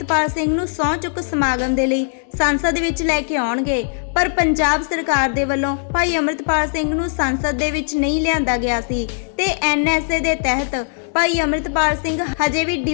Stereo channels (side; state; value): right; silent; digital silence